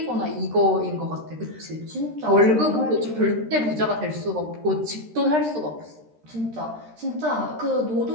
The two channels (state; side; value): late; left; 13 ms